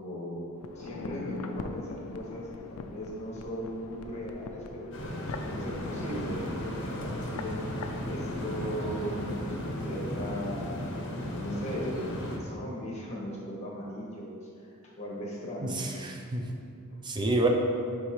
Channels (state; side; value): normal; both; correlation 0.45